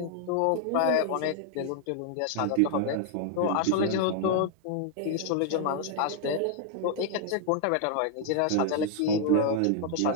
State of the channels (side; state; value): both; different; correlation 0.00